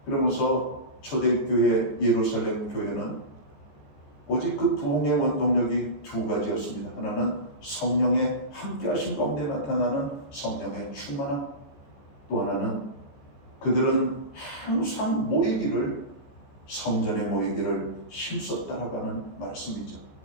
그러면서 초대교회 예루살렘 교회는 오직 그 부흥의 원동력이 두 가지였습니다. 하나는 성령의 함께하신 가운데 나타나는 성령의 충만함, 또 하나는 그들은 항상 모이기를 성전에 모이기를 힘썼다라고 하는 말씀이죠.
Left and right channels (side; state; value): right; late; 14 ms